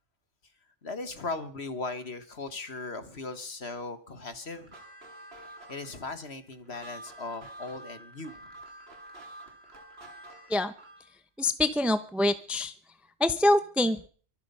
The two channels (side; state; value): both; normal; correlation 0.66